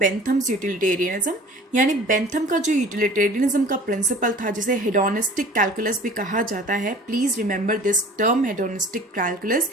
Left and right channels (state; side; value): normal; both; correlation 0.45